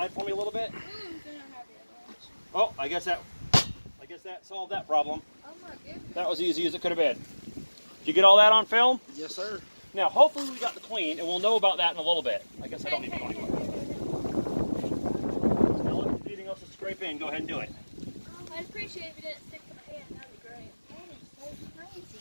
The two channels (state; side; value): inverted; both; correlation -1.00